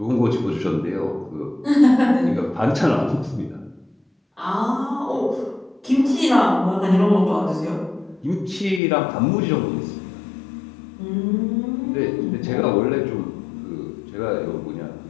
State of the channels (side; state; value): right; drops out; at 8.8 s